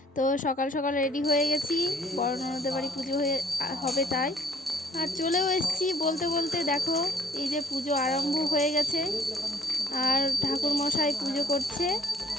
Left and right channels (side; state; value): both; normal; correlation 0.60